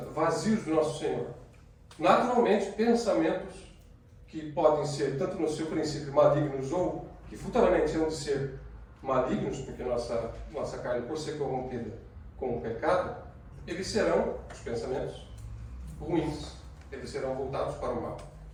vazios do nosso Senhor, naturalmente pensamentos que podem ser, tanto no seu princípio, malignos ou que futuramente hão de ser malignos, porque nossa carne, por ser corrompida com o pecado, eles serão, os pensamentos, ruins, eles serão voltados para o mal.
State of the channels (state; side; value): identical; both; correlation 1.00